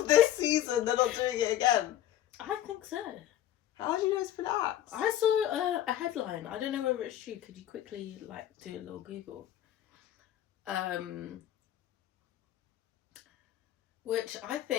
this season, they're not doing it again. I think so. How do you know it's been axed? I saw a headline. I don't know whether it's true. Could you quickly do a little Google? Which I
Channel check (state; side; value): quieter; right; 12.1 dB